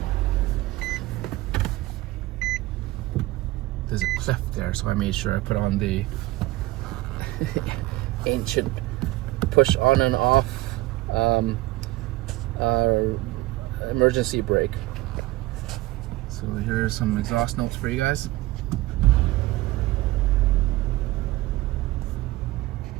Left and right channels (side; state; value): left; quieter; 18.9 dB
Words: There's a cliff there, so I made sure I put on the ancient push on and off emergency brake. So here's some exhaust notes for you guys.